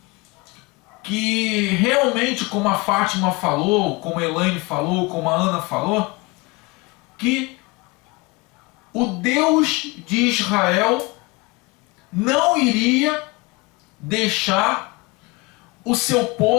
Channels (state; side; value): quieter; right; 25.4 dB